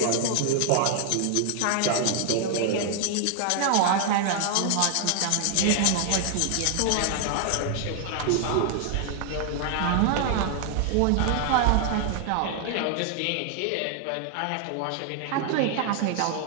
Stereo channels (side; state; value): both; different; correlation 0.00